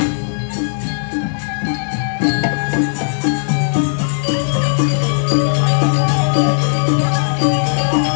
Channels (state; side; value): silent; right; digital silence